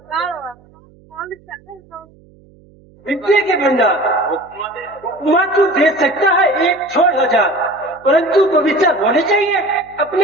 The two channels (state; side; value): noise; right; hum, 28 dB below the sound